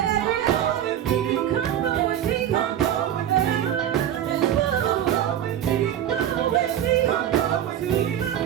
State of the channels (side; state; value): left; quieter; 10.6 dB